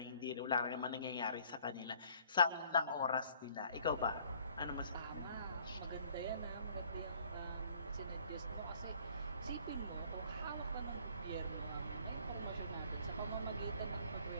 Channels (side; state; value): both; inverted; correlation -0.57